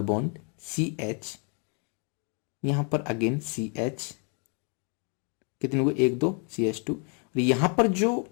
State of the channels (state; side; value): quieter; right; 39.1 dB